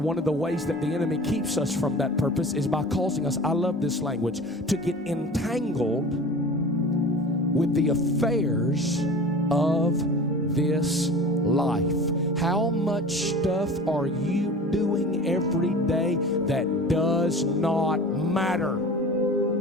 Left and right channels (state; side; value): normal; both; correlation 0.38